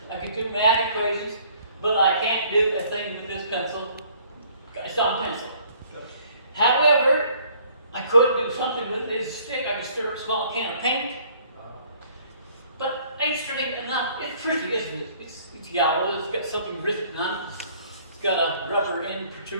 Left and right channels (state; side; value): inverted; both; correlation -0.58